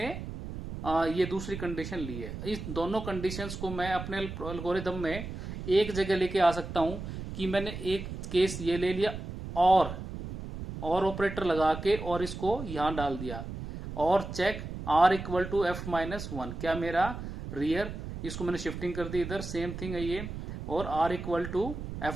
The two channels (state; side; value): noise; right; rumble, 8 dB below the sound